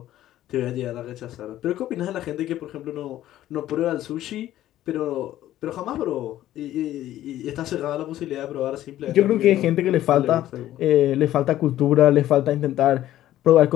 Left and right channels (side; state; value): right; quieter; 13.4 dB